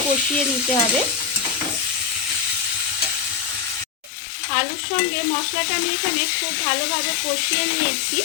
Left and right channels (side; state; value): right; drops out; at 4.1 s